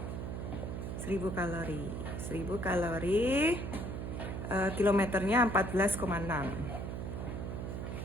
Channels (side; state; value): right; noise; hum, 5 dB below the sound